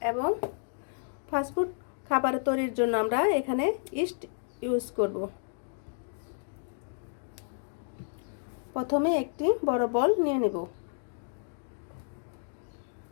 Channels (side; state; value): right; silent; digital silence